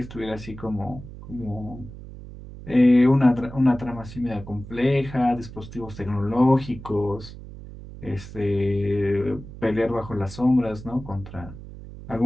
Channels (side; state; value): right; noise; hum, 14 dB below the sound